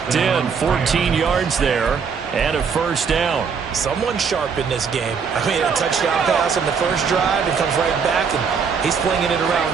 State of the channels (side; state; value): left; quieter; 6.1 dB